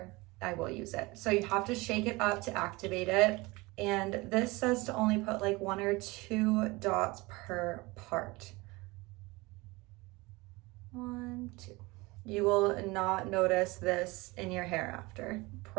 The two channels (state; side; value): quieter; left; 23.2 dB